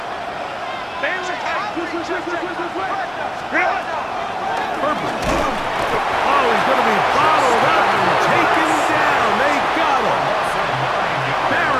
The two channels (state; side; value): identical; both; correlation 1.00